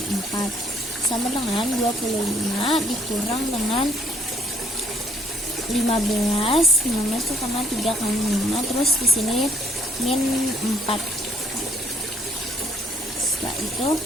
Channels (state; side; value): normal; both; correlation 0.64